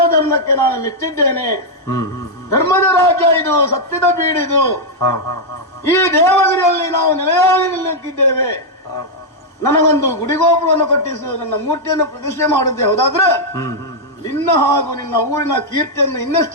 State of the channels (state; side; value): normal; both; correlation -0.03